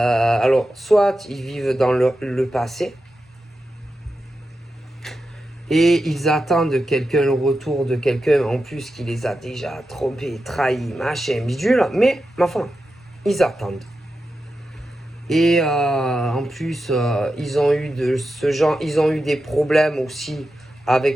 soit ils vivent dans le passé et ils attendent le retour de quelqu'un en plus qui les a déjà trompés, trahis, machin, bidule, mais ma foi, ils attendent. Et en plus, ils ont eu ils ont eu des problèmes aussi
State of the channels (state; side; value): normal; both; correlation 0.90